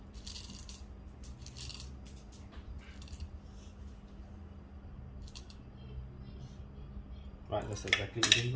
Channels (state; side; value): identical; both; correlation 1.00